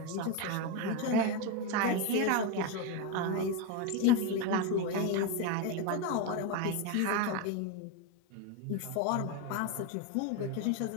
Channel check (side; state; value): both; different; correlation 0.03